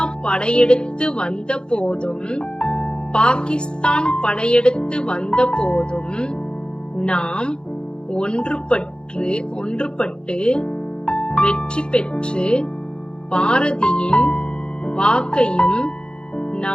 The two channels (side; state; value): right; late; 0.050 ms